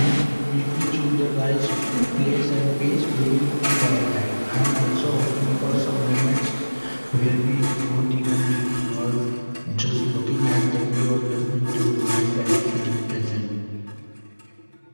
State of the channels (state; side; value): inverted; both; correlation -1.00